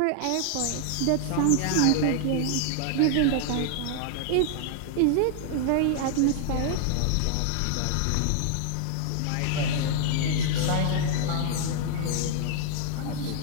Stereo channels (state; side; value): different; both; correlation -0.01